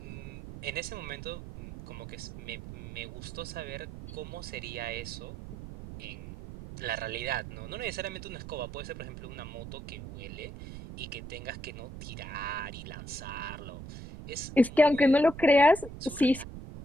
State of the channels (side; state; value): right; noise; rumble, 10 dB below the sound